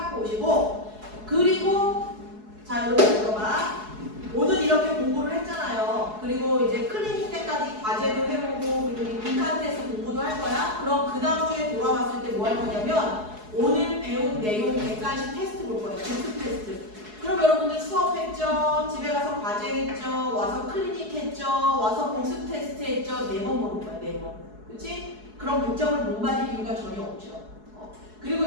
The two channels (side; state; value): left; late; 4.7 ms